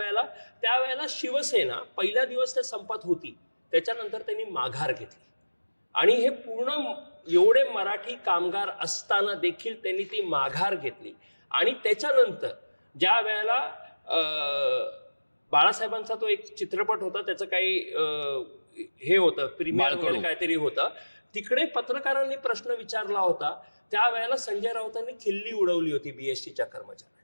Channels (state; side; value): inverted; both; correlation -1.00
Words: शिवसेना पहिला दिवस त्या संपात होती, त्याच्यानंतर त्यांनी माघार घेतली आणि हे पूर्ण एवढे मराठी कामगार असताना देखील त्यांनी ती माघार घेतली. आणि त्याच्यानंतर ज्या वेळेला बाळासाहेबांचा तो एक चित्रपट होता, त्याचं काही हे होतं, प्रीमियर वगैरे काहीतरी होतं, तिकडे पत्रकारांनी प्रश्न विचारला होता. त्यावेळेला संजय राऊतांनी खिल्ली उडवली होती बीएसटीच्या